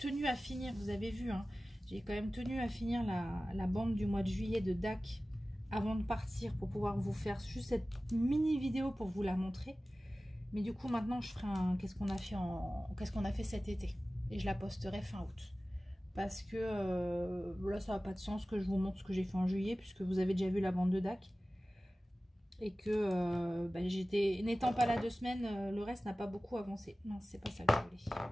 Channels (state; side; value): normal; both; correlation 0.96